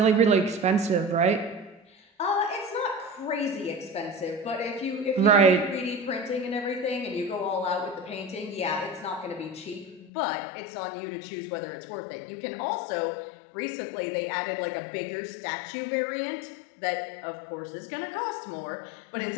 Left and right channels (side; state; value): right; drops out; at 10.1 s